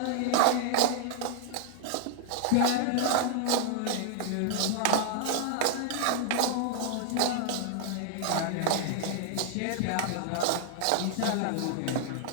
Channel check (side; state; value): both; different; correlation 0.00